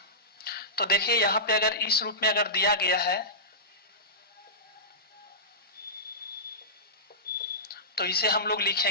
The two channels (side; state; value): both; normal; correlation -0.19